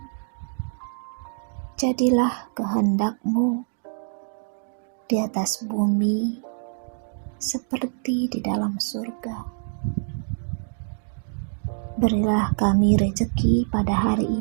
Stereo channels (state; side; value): silent; left; digital silence